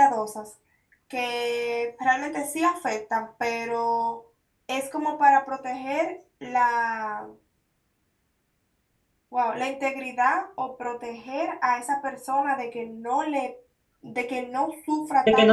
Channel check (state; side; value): identical; both; correlation 1.00